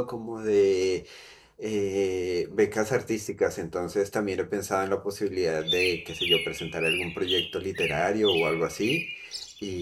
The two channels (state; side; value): identical; both; correlation 1.00